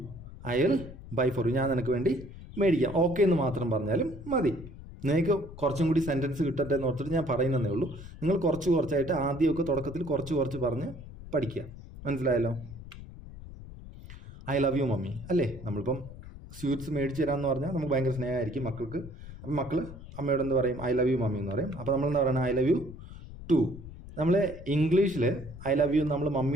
I will buy for you, ഞാൻ നിനക്ക് വേണ്ടി മേടിക്കാം. ഓക്കെ എന്ന് മാത്രം പറഞ്ഞാലും മതി. നിങ്ങൾക്ക് കുറച്ചും കൂടി സെൻറ്റൻസ് കിട്ടട്ടെ എന്ന് ഓർത്തിട്ട് ഞാൻ പറയുന്നതേ ഉള്ളൂ. നിങ്ങൾ കുറച്ചായിട്ട് ആദ്യമൊക്കെ തുടക്കത്തിൽ കുറച്ച് പറഞ്ഞ് പഠിക്കുക. മനസ്സിലായല്ലോ? ഐ ലവ് യു മമ്മി അല്ലേ? നമ്മളിപ്പം സ്വീറ്റ്സ് മേടിച്ച് തരാമെന്ന് പറഞ്ഞാൽ നമുക്ക് ഭയങ്കര സ്നേഹമായിരിക്കും മക്കൾക്ക്. അപ്പം മക്കൾ അമ്മയോട് എന്ത് പറയും? ഐ ലവ് യു മമ്മി എന്ന് പറയും. അപ്പോൾ നമ്മളെന്താ പറയുന്നത്? I love you too. നമ്മൾ ഇംഗ്ലീഷിൽ ഐ ലവ് യു നമ്മൾ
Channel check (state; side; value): noise; left; rumble, 14 dB below the sound